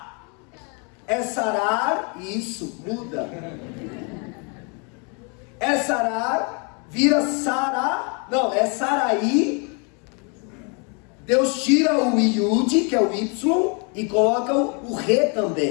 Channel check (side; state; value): right; quieter; 35.7 dB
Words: É Sarar, isso, muda. É Sarar, vira Sará, não, é Saraí. Deus tira o Iud, que é o Y, e coloca o Re